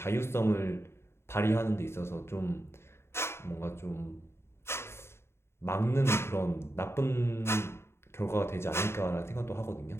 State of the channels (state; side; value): late; right; 0.12 ms